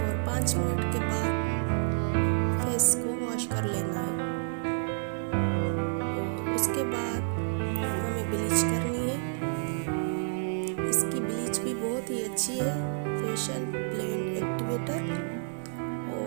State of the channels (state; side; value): silent; left; digital silence